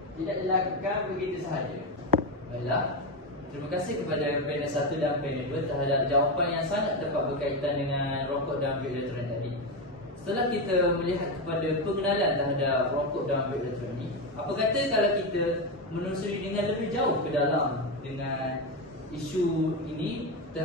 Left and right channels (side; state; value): both; normal; correlation 0.12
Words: dilakukan begitu sahaja. Baiklah, terima kasih kepada panel 1 dan panel 2 terhadap jawapan yang sangat tepat berkaitan dengan rokok dan vape elektronik tadi. Setelah kita melihat kepada pengenalan terhadap rokok dan vape elektronik, apa kata kalau kita menelusuri dengan lebih jauh ke dalam dengan isu ini,